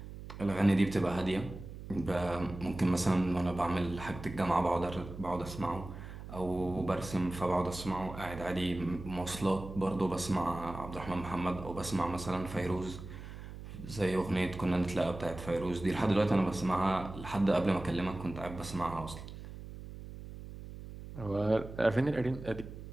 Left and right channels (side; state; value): right; noise; hum, 12 dB below the sound